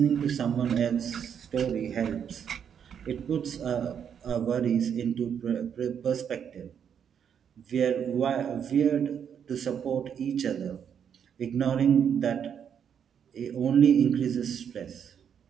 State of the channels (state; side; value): quieter; left; 8.0 dB